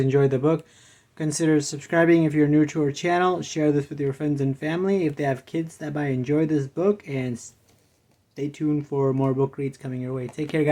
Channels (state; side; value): identical; both; correlation 1.00